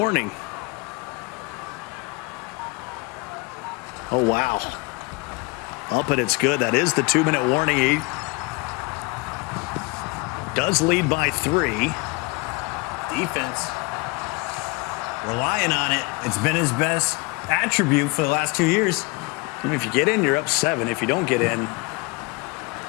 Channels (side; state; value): right; quieter; 26.1 dB